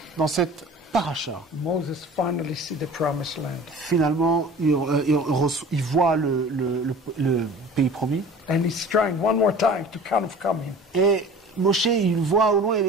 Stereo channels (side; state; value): both; normal; correlation 0.42